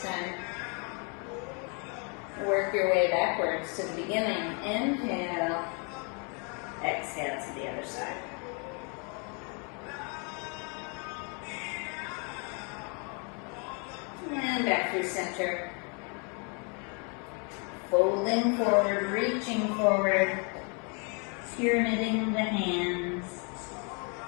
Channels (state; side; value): quieter; right; 36.0 dB